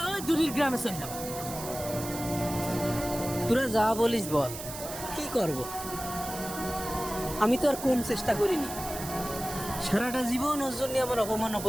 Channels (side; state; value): right; noise; hiss, 10 dB below the sound